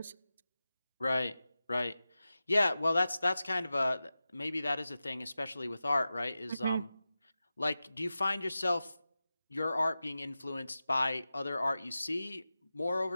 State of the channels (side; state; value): both; inverted; correlation -0.94